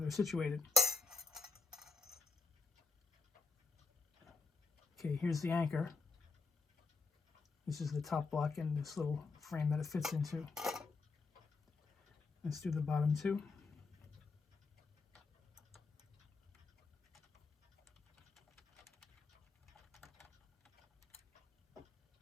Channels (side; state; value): right; quieter; 4.3 dB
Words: situated. Okay, here's the anchor. This is the top block and this little frame that it fits into. Let's do the bottom two.